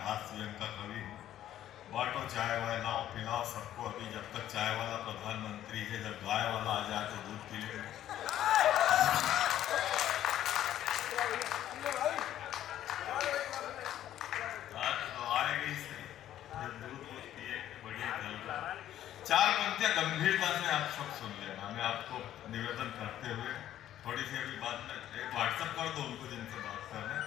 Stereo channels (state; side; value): quieter; right; 12.1 dB